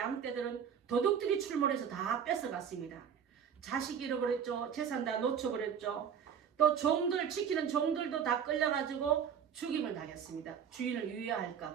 도둑들이 출몰해서 다 뺏어갔습니다. 자식 잃어버렸죠. 재산 다 놓쳐버렸죠. 또 종들, 지키는 종들도 다 끌려가지고 죽임을 당했습니다. 주인을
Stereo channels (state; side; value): quieter; left; 7.8 dB